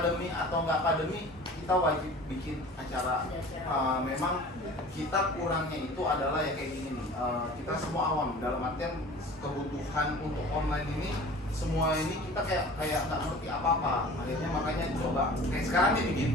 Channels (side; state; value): both; normal; correlation 0.42